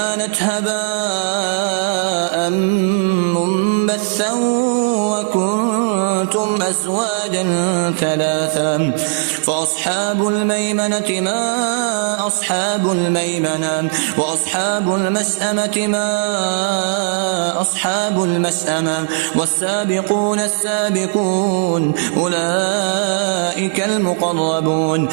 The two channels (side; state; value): left; silent; 66 dB below the other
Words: هباء منبثا وكنتم أزواجا ثلاثا. فأصحاب الميمنة ما أصحاب الميمنة وأصحاب المشأمة ما أصحاب المشأمة والسابقون السابقون أولئك المقربون